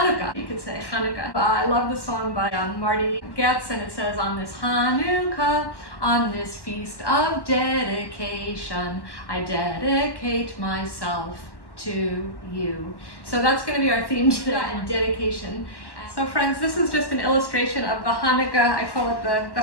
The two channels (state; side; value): late; right; 1.1 ms